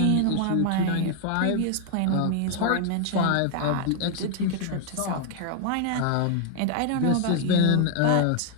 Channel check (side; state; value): both; different; correlation 0.00